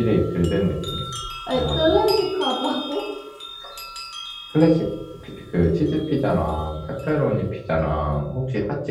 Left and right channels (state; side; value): identical; both; correlation 1.00